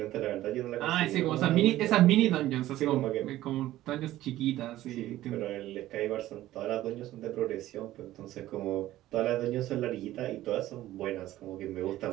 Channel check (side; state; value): left; quieter; 14.9 dB